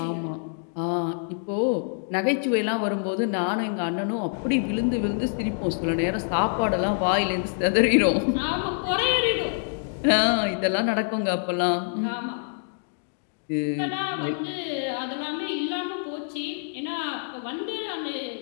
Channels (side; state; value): right; silent; digital silence